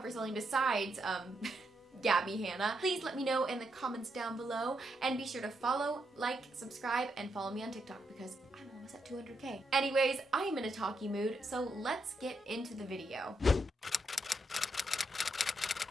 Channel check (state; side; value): normal; both; correlation 0.80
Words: something besides, Gabbie Hanna, please let me know in the comments down below, and be sure to follow, like, subscribe, and follow me on TikTok because I'm almost at 200K. Anyways, I am in a talky mood, so let's get into the video.